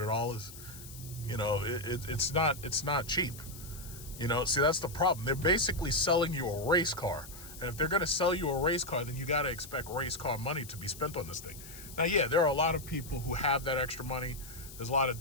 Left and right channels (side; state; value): left; noise; hiss, 15 dB below the sound